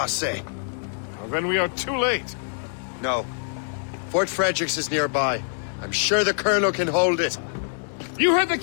Well, then we are too late. No. Fort Fredericks is nearby. I'm sure the Colonel can hold it. You heard the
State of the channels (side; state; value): right; silent; 62 dB below the other